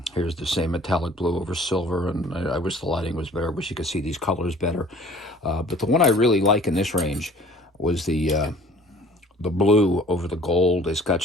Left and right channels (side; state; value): both; normal; correlation 0.50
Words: the same metallic blue over silver, and I wish the lighting was better. I wish you could see these colors better. But the one I really like in this range was the blue over the gold. It's got